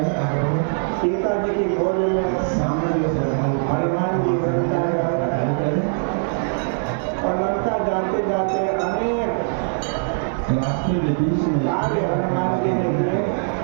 सीता जी की खोज में हनुमान जी लंका और लंका जाते जाते अनेक कार्य हनुमान जी ने किए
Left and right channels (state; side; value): silent; left; 64 dB below the other